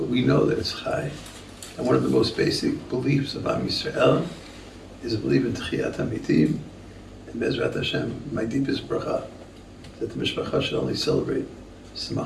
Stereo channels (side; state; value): both; identical; correlation 1.00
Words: we know that it's Chai. And one of the most basic beliefs of Am Yisrael is a belief in Tchiyat HaMitim, and Bezrat Hashem, my deepest bracha, that the Mishpacha should only celebrate